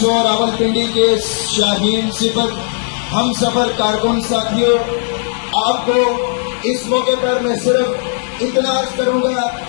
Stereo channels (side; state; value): right; silent; digital silence